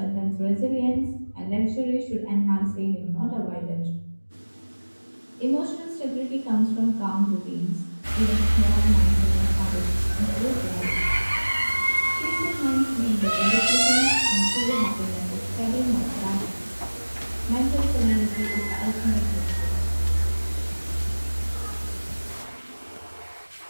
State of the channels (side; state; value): both; inverted; correlation -1.00